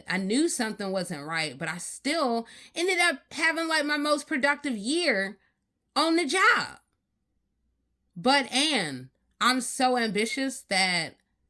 I knew something wasn't right, but I still ended up having like my most productive year on the job. But I'm so ambitious that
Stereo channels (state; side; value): identical; both; correlation 1.00